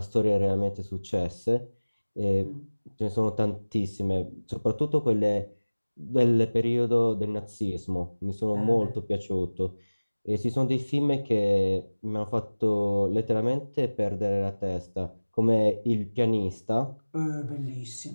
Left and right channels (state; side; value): inverted; both; correlation -1.00